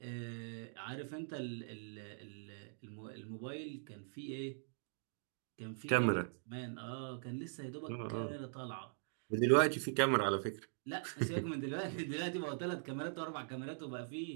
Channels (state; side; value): silent; left; digital silence